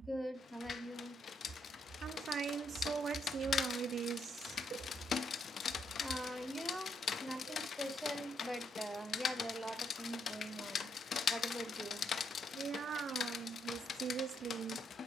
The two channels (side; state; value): both; normal; correlation 0.76